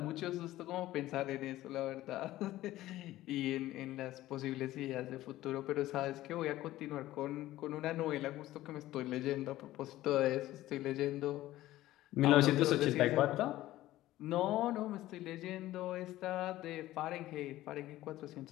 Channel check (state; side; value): quieter; right; 15.5 dB